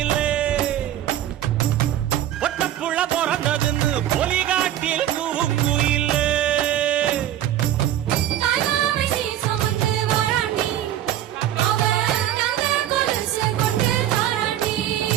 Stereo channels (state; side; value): quieter; left; 11.9 dB